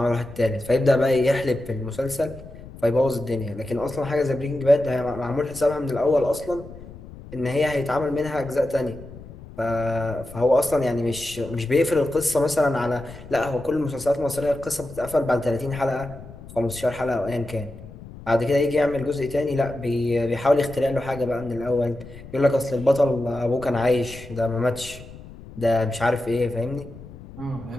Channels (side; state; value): left; noise; rumble, 16 dB below the sound